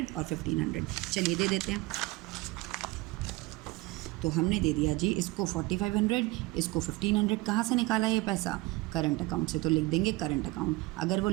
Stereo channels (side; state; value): left; quieter; 21.3 dB